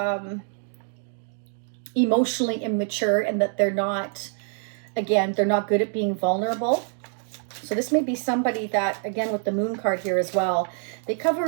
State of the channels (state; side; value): silent; left; 56 dB below the other